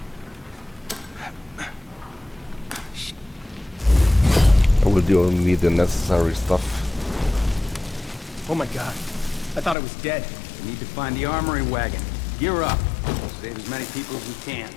I will do only the necessary stuff. Oh my god. I thought I was dead. We need to find the armory wagon. Gear up. Save as many people as we can.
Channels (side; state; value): right; drops out; at 9.8 s